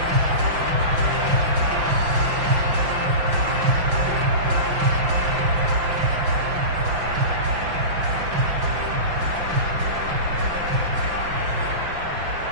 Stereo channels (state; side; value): late; left; 5.8 ms